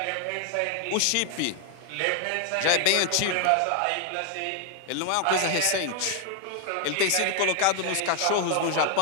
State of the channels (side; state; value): both; different; correlation 0.00